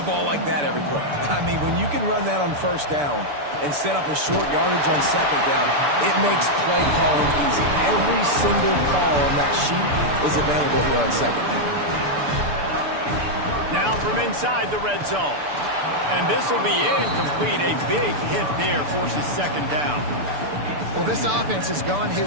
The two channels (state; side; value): late; left; 6.9 ms